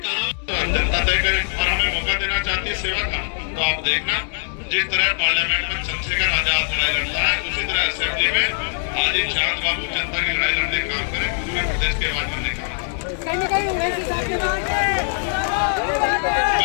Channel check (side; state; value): right; silent; 64 dB below the other